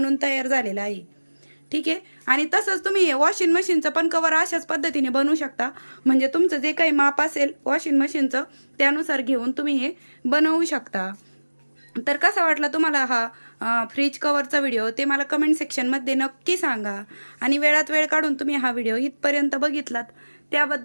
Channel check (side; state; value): both; inverted; correlation -1.00